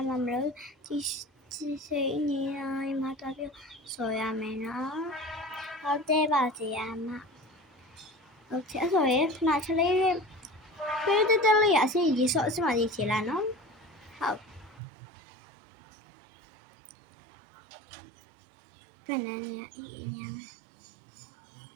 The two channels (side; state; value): left; drops out; at 14.8 s